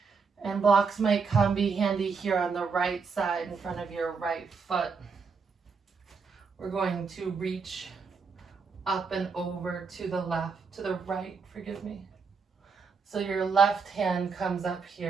And blocks might be handy here on the right side in front of your right foot. We're going to reach up and over to the right, forgive me. So your left hand comes up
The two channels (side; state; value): left; quieter; 5.2 dB